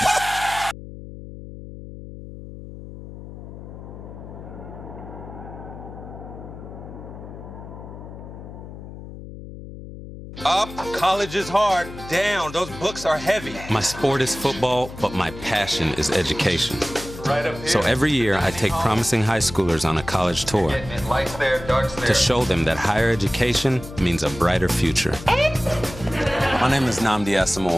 Up, college is hard. Down, those books are heavy. My sport is football, but my passion is education. Right up here. So every year I take promising high schoolers on a college tour Lights there, darks there. to show them that higher education means a brighter future. My name is Nnamdi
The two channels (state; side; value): noise; left; hum, 13 dB below the sound